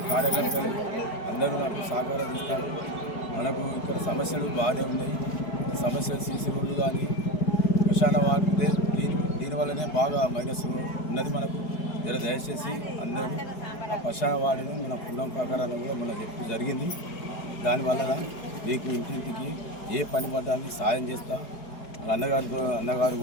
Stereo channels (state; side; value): late; right; 4.8 ms